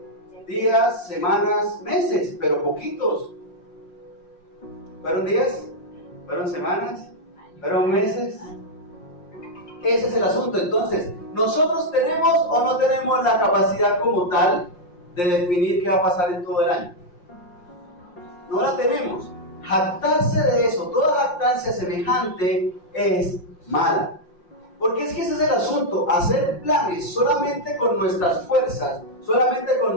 días, semanas, meses, pero poquitos. ¿Fueron días? ¿Fueron semanas? ¿Fueron meses? Ese es el asunto. Entonces, ¿nosotros tenemos o no tenemos la capacidad como tal de definir qué va a pasar en todo el año? No la tenemos. Jactarse de eso, toda jactancia semejante es mala. Porque es que ese es el asunto, hacer planes solamente con nuestras fuerzas, solamente con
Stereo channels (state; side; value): late; right; 5.6 ms